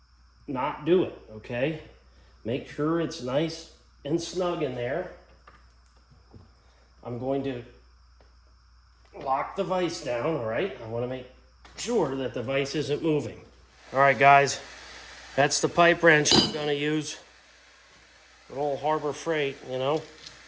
not do it, okay? Make sure it's nice and snug in there. I'm going to lock the vise down, all right? I want to make sure that the vise isn't moving. All right, guys, that's the pipe wrench I'm going to use. Good old Harbor Freight, you know.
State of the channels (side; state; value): both; identical; correlation 1.00